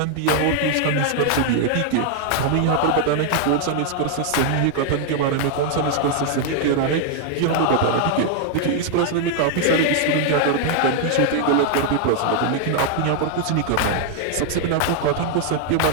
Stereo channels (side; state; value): both; different; correlation 0.00